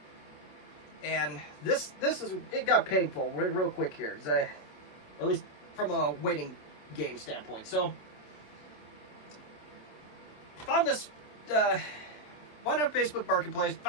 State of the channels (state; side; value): late; right; 27 ms